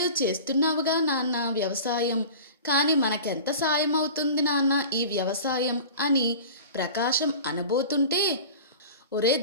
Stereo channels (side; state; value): both; inverted; correlation -0.37